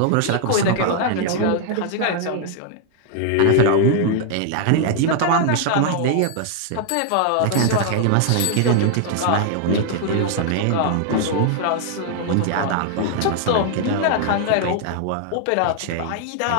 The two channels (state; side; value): different; both; correlation 0.00